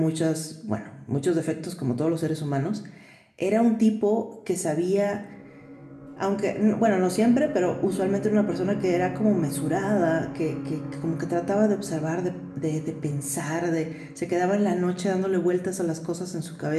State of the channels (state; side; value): identical; both; correlation 1.00